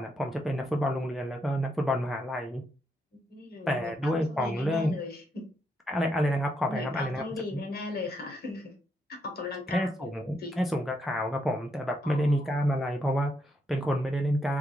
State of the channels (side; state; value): both; normal; correlation 0.78